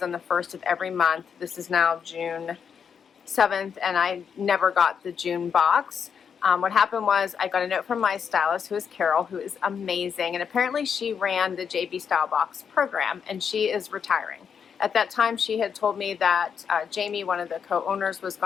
on the 1st of every month. This is now June 7th and I never got the June box. What happened was I got a note from my stylist, who is Carol, who is amazing, and apparently she ran the JB Stylebox program and she is retiring. At that time she had told me that Jamie, one of the co-owners, was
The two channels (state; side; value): quieter; right; 7.0 dB